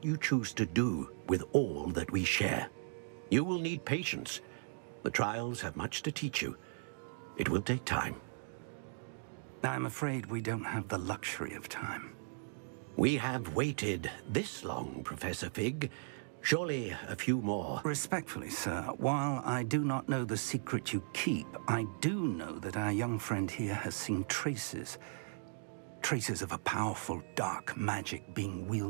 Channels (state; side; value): silent; left; digital silence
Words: you choose to do with all that we share. You will need patience. The trials have much to teach you. It will take time. I'm afraid we don't have the luxury of time. We have waited this long, Professor Fig. Surely a few more. Respectfully, sir, while I do not know the secret you keep, I do know that our young friend here has seen traces of a powerful dark magic being